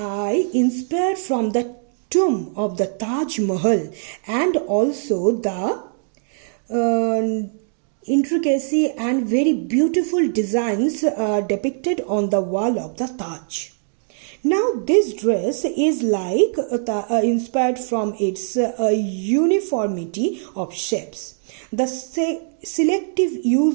inspired from the tomb of the Taj Mahal and also the intricacy and very beautiful designs depicted on the wall of the Taj. Now this dress is like inspired from its uniformity of shapes. The selective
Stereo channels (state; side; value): silent; left; digital silence